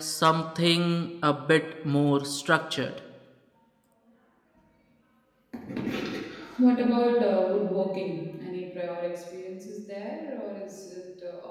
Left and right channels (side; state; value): both; identical; correlation 1.00